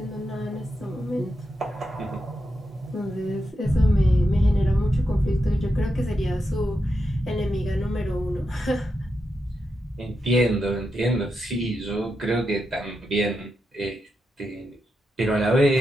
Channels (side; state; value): both; normal; correlation 0.86